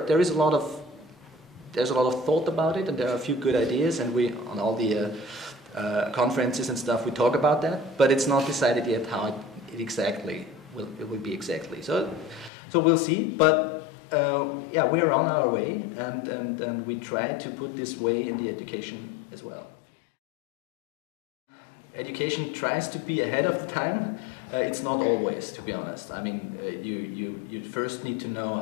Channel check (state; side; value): drops out; right; at 12.5 s